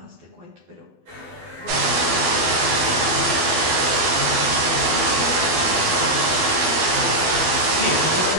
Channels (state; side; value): late; left; 12 ms